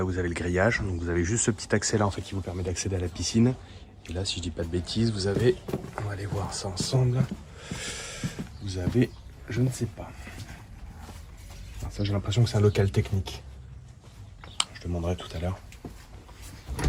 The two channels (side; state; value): both; identical; correlation 1.00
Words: vous avez le grillage. Donc vous avez juste ce petit accès là en fait qui vous permet d'accéder à la piscine. Et là, si je dis pas de bêtises, vous avez, on va aller voir ça ensemble. Vous avez, je ne sais pas. Alors ça, j'ai l'impression que c'est un local technique. Je demanderai tout à l'heure.